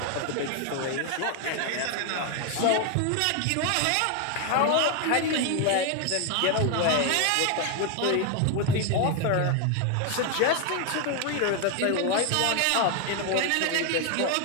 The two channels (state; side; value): different; both; correlation 0.01